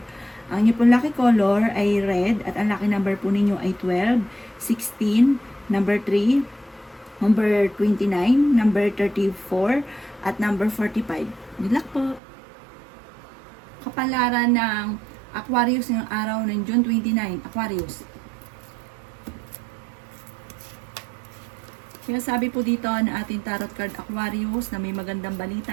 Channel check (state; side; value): drops out; left; at 12.2 s